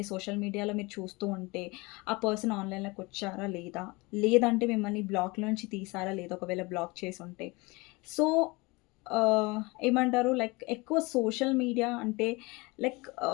సోషల్ మీడియాలో మీరు చూస్తూ ఉంటే, ఆ పర్సన్ ఆన్‌లైన్‌లోకొచ్చారా లేదా? లేదంటే మిమ్మల్ని బ్లాక్‌లోంచి తీసారా లేదా? ఒకవేళ బ్లాక్ చేసుంటే. సో, ఏమంటారు లైక్ ఎక్కువ సోషల్ మీడియా అంటే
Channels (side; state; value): right; quieter; 24.9 dB